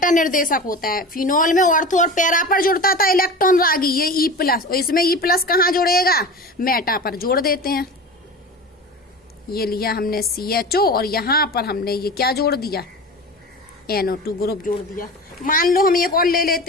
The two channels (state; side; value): normal; both; correlation 0.32